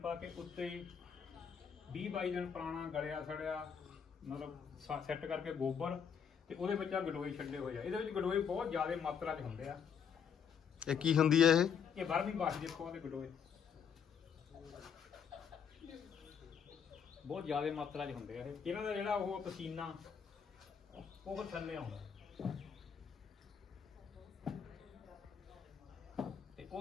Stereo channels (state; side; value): quieter; right; 7.2 dB